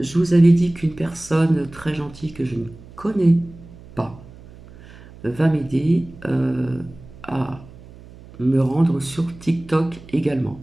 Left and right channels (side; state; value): right; noise; hum, 20 dB below the sound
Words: vous avais dit qu'une personne très gentille que je ne connais pas va m'aider à me rendre sur TikTok également.